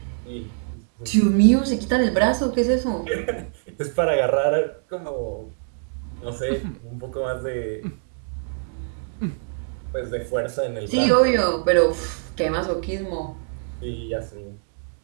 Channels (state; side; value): silent; left; 63 dB below the other